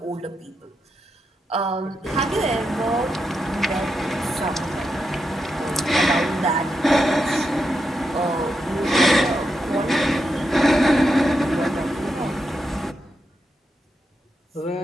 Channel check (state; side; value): normal; both; correlation 0.85